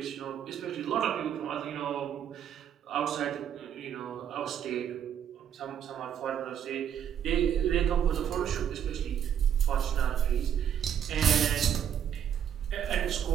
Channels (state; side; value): quieter; left; 9.2 dB